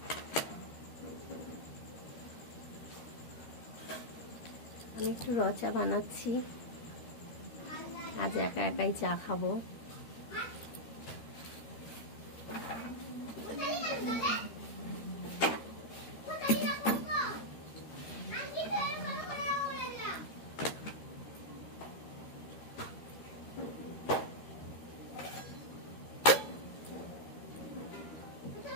আমি একটু র চা বানাচ্ছি, আজ একা একাই চা খাবো।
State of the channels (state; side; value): late; right; 13 ms